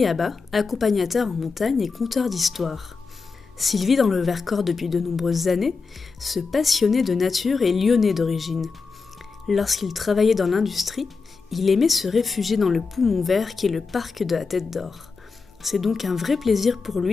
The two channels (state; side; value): quieter; right; 4.7 dB